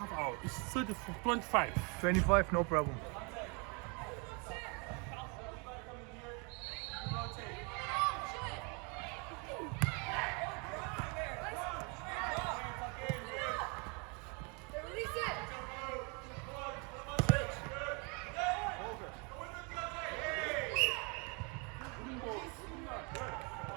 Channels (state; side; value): quieter; left; 32.9 dB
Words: hour. It's 30, 25. 25, no problem.